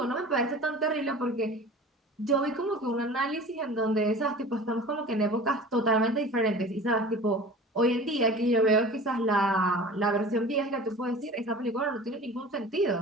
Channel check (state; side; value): normal; both; correlation 0.39